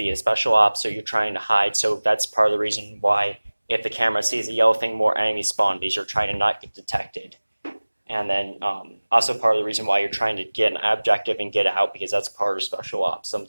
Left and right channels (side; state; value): both; inverted; correlation -1.00